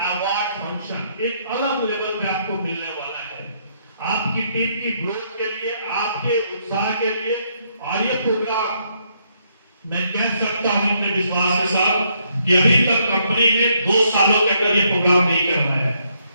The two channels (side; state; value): both; inverted; correlation -0.73